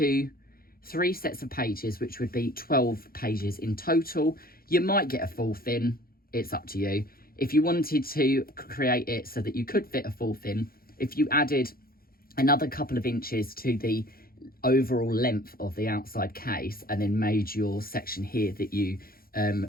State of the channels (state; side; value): late; right; 0.43 ms